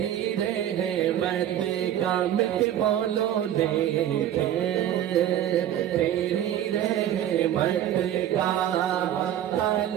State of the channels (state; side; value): quieter; left; 11.3 dB